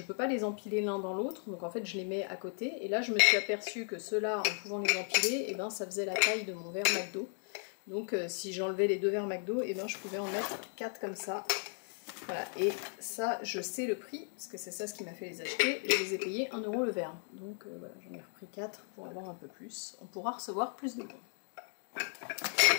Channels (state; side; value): silent; right; 54 dB below the other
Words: peux pas les empiler l'un dans l'autre, donc en fait je les mets à côté. Et là je me suis aperçue que ceux-là, en pouvant les empiler, et ben ça faisait la taille de mon verre McDo. Donc si j'enlevais les deux verres McDo, et ben je pouvais en mettre 4 comme ça. Voilà, et ça, je sais le prix, parce que c'est ça ce qui m'a fait les acheter. Je les ai payés 1 € le verre. Donc voilà, j'en ai repris 4 pour avoir un peu plus. On pourra recevoir plus de bons.